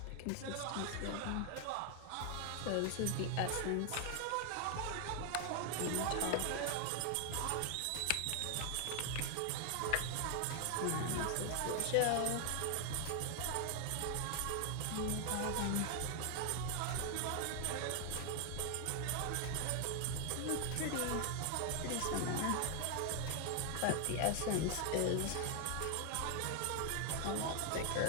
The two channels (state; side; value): different; both; correlation 0.00